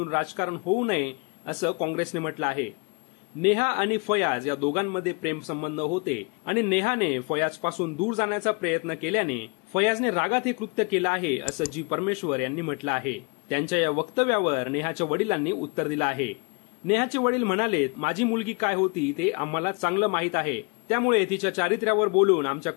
राजकारण होऊ नये असं काँग्रेसने म्हटलं आहे। नेहा आणि फयाज या दोघांमध्ये प्रेम संबंध होते आणि नेहाने फयाज पासून दूर जाण्याचा प्रयत्न केल्याने फयाजने रागात हे कृत्य केलं आहे असं जी परमेश्वर यांनी म्हटलं आहे। त्यांच्या या वक्तव्यावर नेहाच्या वडिलांनी उत्तर दिलं आहे। नेहाचे वडील म्हणाले, माझी मुलगी काय होती ते आम्हाला चांगलं माहीत आहे, त्यामुळे तिच्या चारित्र्यावर बोलून आमच्या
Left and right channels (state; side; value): quieter; right; 31.9 dB